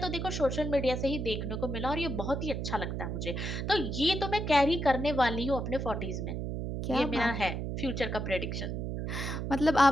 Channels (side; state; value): right; noise; hum, 3 dB below the sound